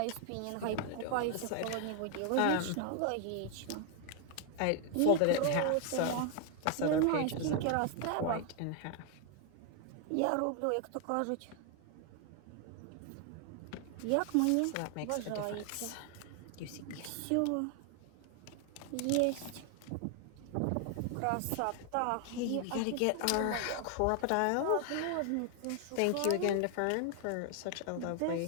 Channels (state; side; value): different; both; correlation 0.00